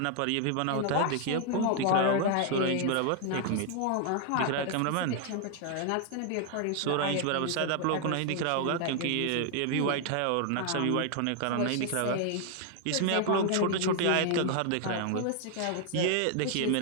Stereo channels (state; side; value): different; both; correlation 0.00